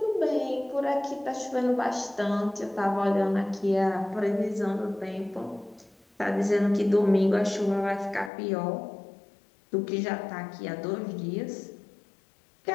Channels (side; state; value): right; drops out; at 8.3 s